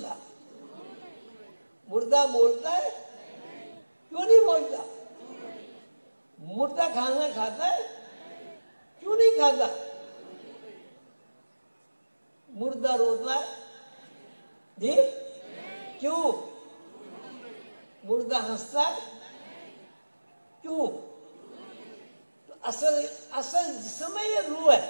مردہ بولتا ہے؟ کیوں نہیں بولتا؟ مردہ کھانا کھاتا ہے؟ کیوں نہیں کھاتا؟ مردہ روتا ہے؟ جی کیوں؟ مردہ ہنستا ہے؟ کیوں؟ تو اصل جسم ہے یا روح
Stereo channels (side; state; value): both; inverted; correlation -1.00